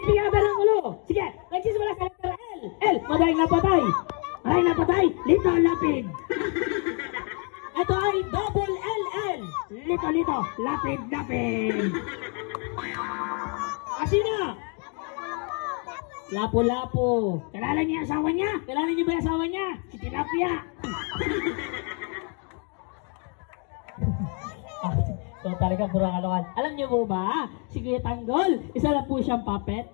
ka ng ulo. Sige, nagsisimula sa letter L. L, madaling napatay. Madaling napatay, Lito Lapid. Ito ay double LL. Lito, lapid, lapid. Sino? Lapo-lapo. Kilala niya asawa niya? Kilala niyo ba yung asawa niya? Si Tilapia. So talaga puro kalokan. Alam niyo po ba? Si Kuya Tanggol, isa lang po siyang puppet.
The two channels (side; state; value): right; quieter; 37.3 dB